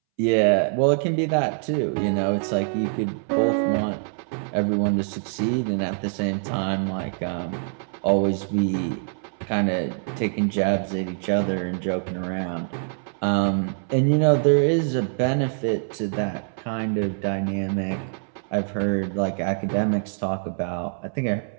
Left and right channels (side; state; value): left; silent; 62 dB below the other